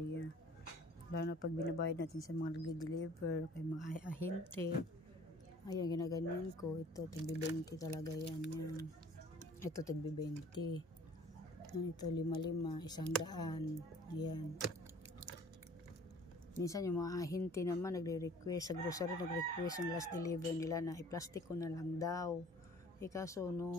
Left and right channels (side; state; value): both; normal; correlation 0.51